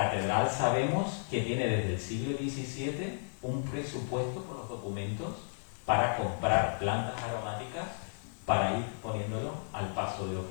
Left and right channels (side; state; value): right; silent; digital silence